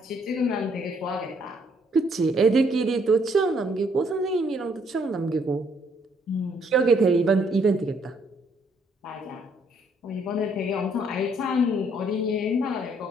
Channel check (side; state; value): both; normal; correlation 0.68